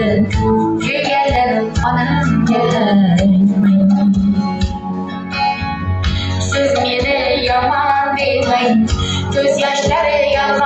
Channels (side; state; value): both; identical; correlation 1.00